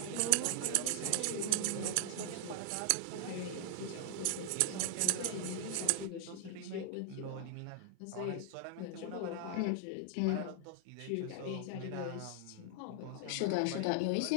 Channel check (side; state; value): both; different; correlation 0.00